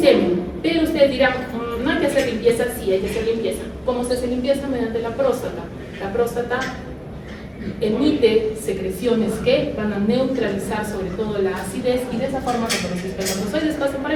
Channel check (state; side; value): identical; both; correlation 1.00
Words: Pero ustedes dirán, no hay que hacer limpieza. Sí, hay que hacer limpieza. ¿Cómo se hace limpieza? Mediante la próstata. La próstata emite secreciones que van a neutralizar sobre todo la acidez y de esa forma cuando los espermatozoides pasen por